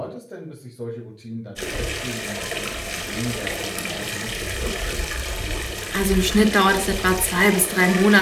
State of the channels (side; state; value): both; identical; correlation 1.00